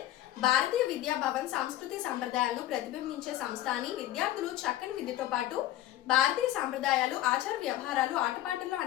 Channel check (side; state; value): right; quieter; 14.2 dB